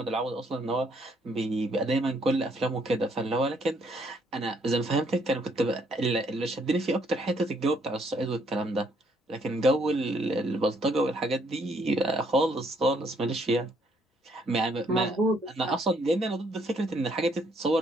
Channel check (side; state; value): both; normal; correlation 0.69